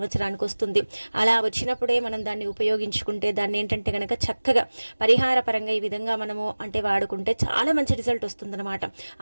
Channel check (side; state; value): both; inverted; correlation -1.00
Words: వస్తుంది. అలా వచ్చినప్పుడే మనం దాన్ని ఉపయోగించుకుంటే, దాన్ని ఏంటంటే కనుక చక్కగా పరిహార పరంగా ఈ విధంగా మనము అంటే వాడుకుంటే చాలా మంచి రిజల్ట్ వస్తుందన్నమాట.